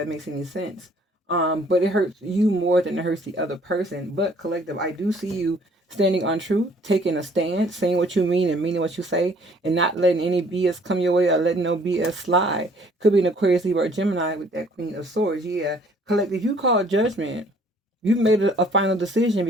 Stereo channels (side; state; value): both; normal; correlation 0.59